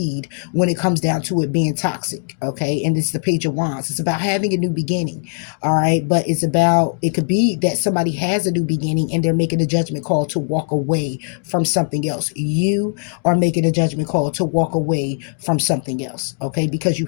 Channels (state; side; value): silent; right; 60 dB below the other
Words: when it comes down to it being toxic. Okay, and it's the Page of Wands. It's about having a new beginning. All right, but it could be that somebody has a new beginning and they're making a judgment call to walk away from something else. You are making a judgment call to walk away from something else. Okay, because